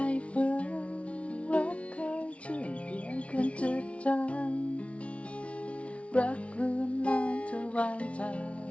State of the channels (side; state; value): right; late; 0.062 ms